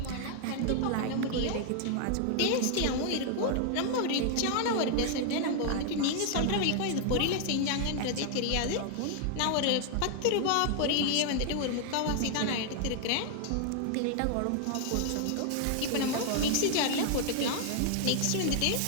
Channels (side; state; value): both; different; correlation 0.00